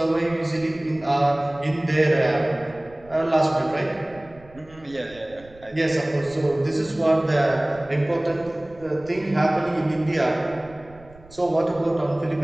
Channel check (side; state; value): right; noise; rumble, 23 dB below the sound